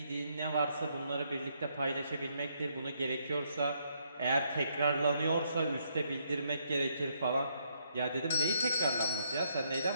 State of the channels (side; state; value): both; inverted; correlation -0.74